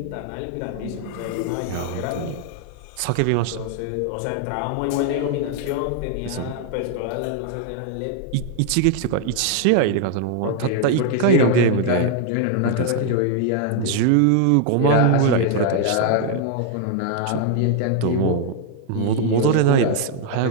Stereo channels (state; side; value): different; both; correlation 0.00